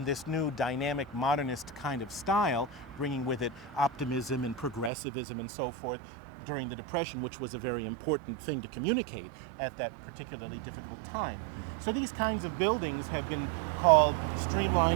this new dynamic modernist kind of style, bringing with it optimism and progressivism and so forth during the Depression, which was a very important thing to communicate at that particularly difficult time. So these kinds of buildings have been called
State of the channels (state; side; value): drops out; left; at 4.9 s